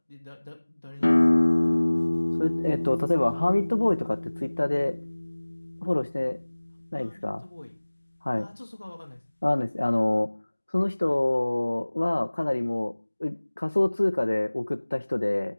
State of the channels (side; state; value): both; inverted; correlation -1.00